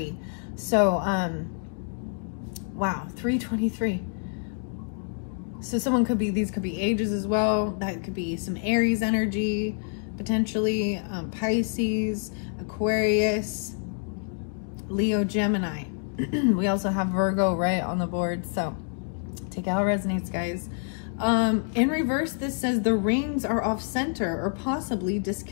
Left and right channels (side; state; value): right; silent; 60 dB below the other